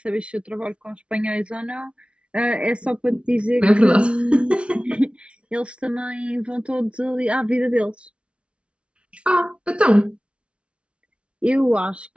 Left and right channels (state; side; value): late; left; 0.060 ms